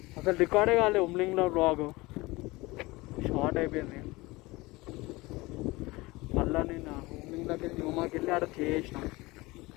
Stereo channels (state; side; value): quieter; right; 21.8 dB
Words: అసలు రికార్డే కాలేదు ఉమ్లింగ్లో బ్లాగ్, షార్ట్ అయిపోయింది. మళ్ళీ నేను ఉమ్లింగ్ దగ్గర న్యూమాకి వెళ్ళి ఆడ చేసిన.